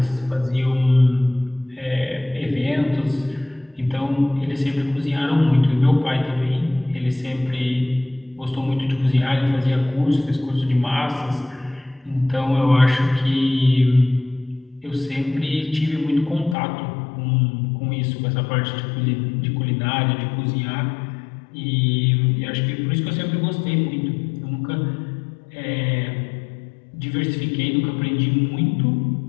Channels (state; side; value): drops out; right; at 16.6 s